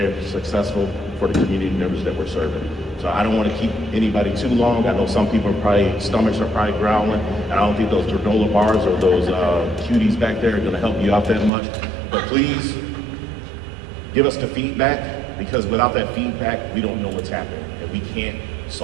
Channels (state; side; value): drops out; left; at 11.5 s